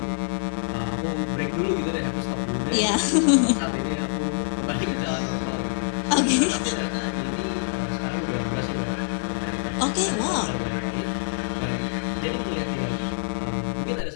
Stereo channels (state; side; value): silent; right; digital silence